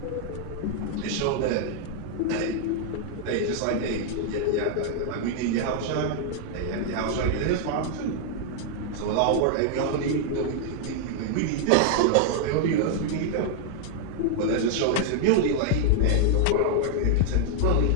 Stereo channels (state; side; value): different; both; correlation 0.00